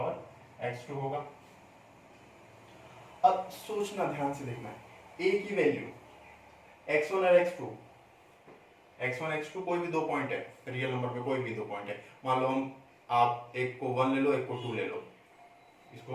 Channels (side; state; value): both; identical; correlation 1.00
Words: x2 होगा। अब सोचना, ध्यान से देखना है, a की वैल्यू x1 और x1 x2 कोई भी दो पॉइंट है, रियल नंबर पे कोई भी दो पॉइंट है। मान लो हम, आप एक को 1 ले लो, एक को 2 ले लो,